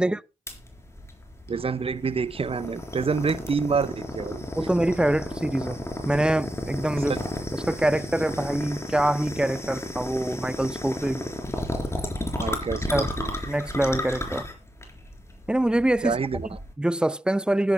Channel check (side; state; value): both; normal; correlation 0.87